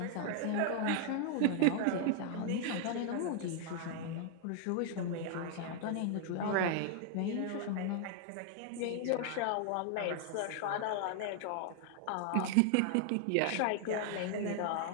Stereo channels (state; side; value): different; both; correlation 0.00